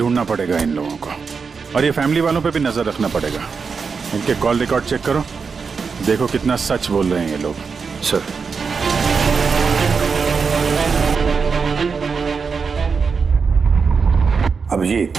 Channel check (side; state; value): left; quieter; 5.4 dB